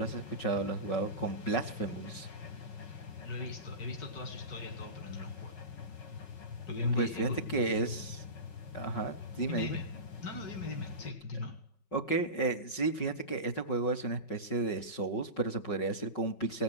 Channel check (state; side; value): late; right; 5.4 ms